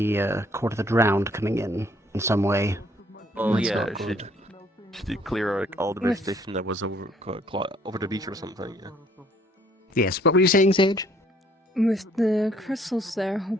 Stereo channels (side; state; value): both; normal; correlation 0.62